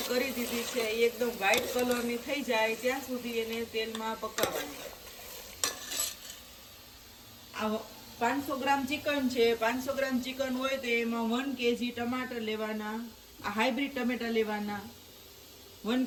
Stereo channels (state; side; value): identical; both; correlation 1.00